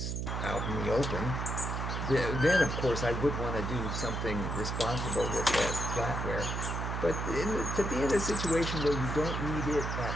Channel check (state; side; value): noise; right; hum, 2 dB below the sound